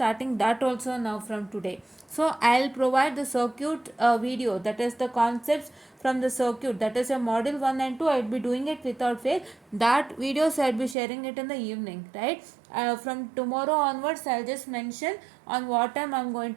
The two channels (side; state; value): left; drops out; at 11.0 s